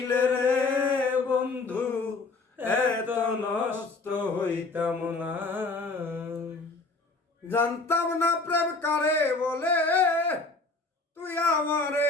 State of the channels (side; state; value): right; quieter; 3.6 dB